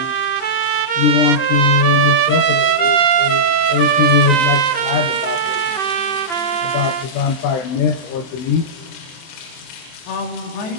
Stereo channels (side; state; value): right; late; 23 ms